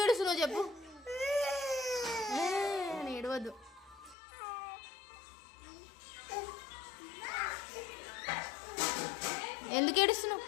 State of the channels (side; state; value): right; drops out; at 4.2 s